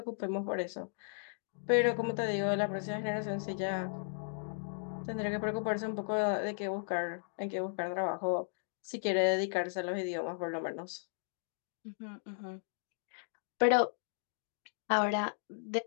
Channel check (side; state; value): right; silent; digital silence